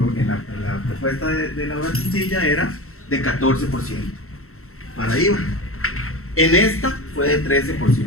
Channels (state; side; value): late; right; 0.63 ms